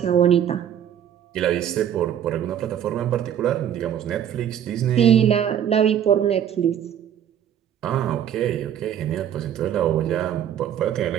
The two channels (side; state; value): left; quieter; 9.7 dB